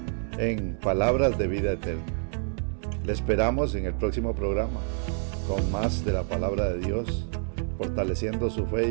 en Palabras de Vida Eterna. Le esperamos en el próximo programa con más de la palabra de Dios, fortaleciendo su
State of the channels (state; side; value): silent; left; 57 dB below the other